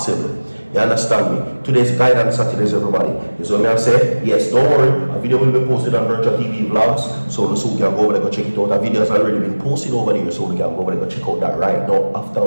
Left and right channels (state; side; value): inverted; both; correlation -1.00